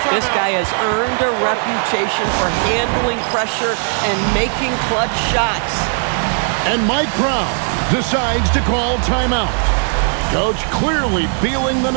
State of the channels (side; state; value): left; silent; 56 dB below the other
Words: This guy has earned a reputation for handling pressure and making clutch shots. And Mike Brown decides to call timeout. Coach clearly feeling the